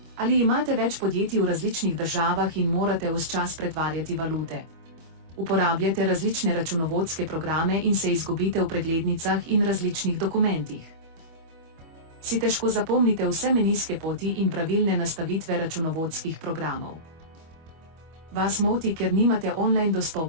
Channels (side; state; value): left; late; 25 ms